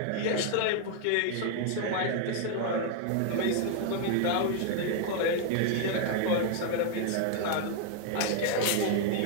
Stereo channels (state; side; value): different; both; correlation 0.00